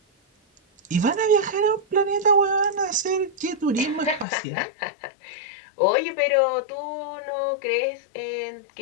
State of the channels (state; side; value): drops out; right; at 4.2 s